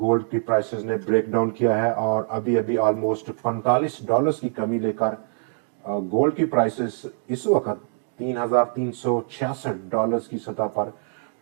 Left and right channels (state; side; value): silent; left; digital silence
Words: की प्राइसेस ने ब्रेकडाउन किया है और अभी अभी ऑलमोस्ट $45 की कमी लेकर गोल्ड की प्राइसेस इस वक्त $3,366 की सतह पर